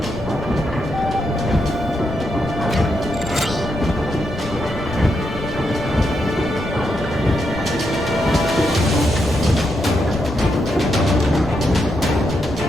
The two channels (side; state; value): left; noise; rumble, 10 dB below the sound